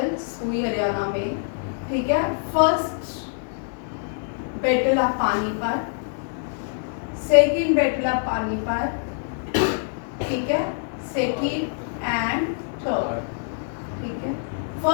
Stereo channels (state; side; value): silent; right; 62 dB below the other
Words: हुई हरियाणा में, ठीक है। First battle of Panipat, second battle of Panipat, ठीक है, सेकंड एंड थर्ड, ठीक है।